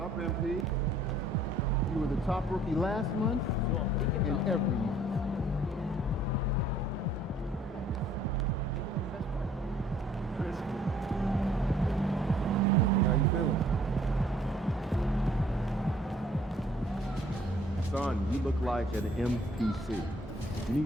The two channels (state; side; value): normal; both; correlation 0.59